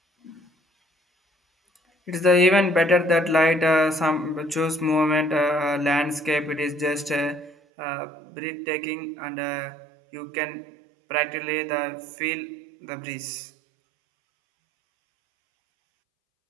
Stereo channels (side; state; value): left; drops out; at 7.6 s